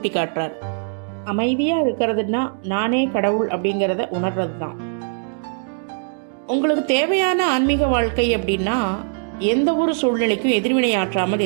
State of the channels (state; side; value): silent; left; digital silence